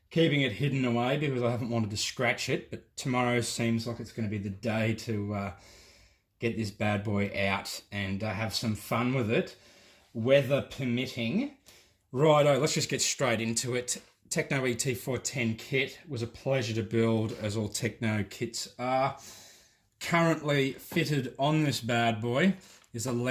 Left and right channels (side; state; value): both; identical; correlation 1.00